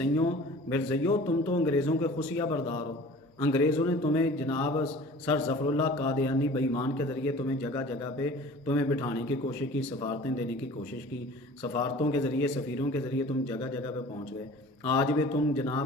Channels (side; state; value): both; normal; correlation 0.44